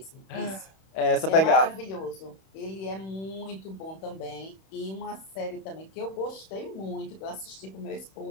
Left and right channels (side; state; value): right; late; 31 ms